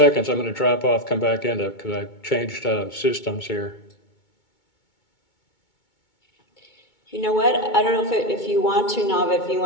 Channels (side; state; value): right; late; 2.2 ms